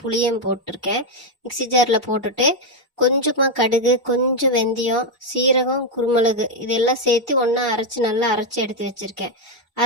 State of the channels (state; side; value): normal; both; correlation 0.03